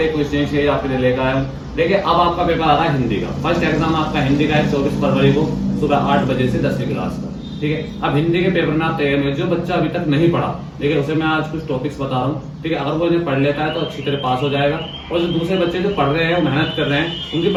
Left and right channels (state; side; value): identical; both; correlation 1.00